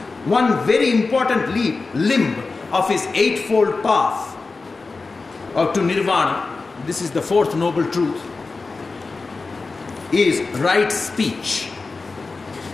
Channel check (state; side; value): quieter; right; 4.0 dB